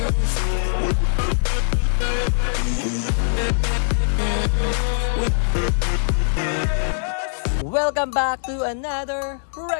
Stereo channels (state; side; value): silent; right; 64 dB below the other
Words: Welcome back to another